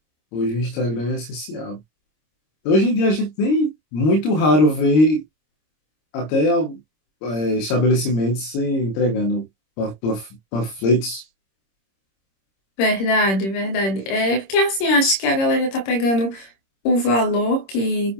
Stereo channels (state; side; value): late; right; 26 ms